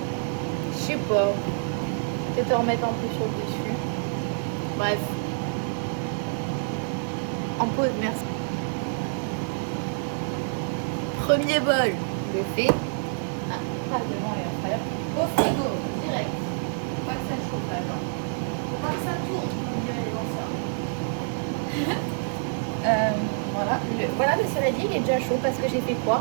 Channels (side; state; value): left; silent; digital silence